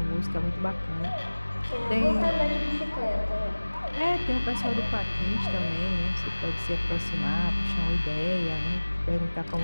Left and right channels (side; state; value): both; inverted; correlation -1.00